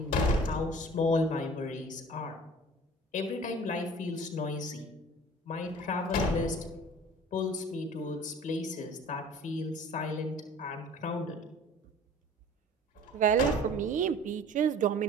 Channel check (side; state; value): both; normal; correlation 0.45